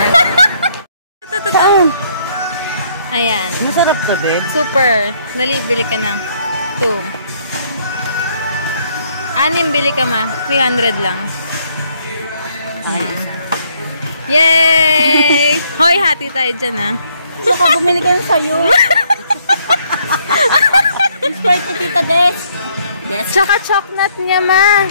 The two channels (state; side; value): inverted; both; correlation -0.68